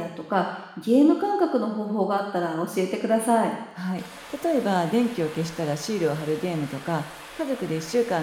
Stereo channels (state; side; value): identical; both; correlation 1.00